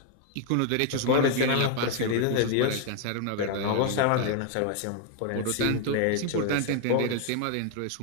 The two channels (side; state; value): both; different; correlation 0.00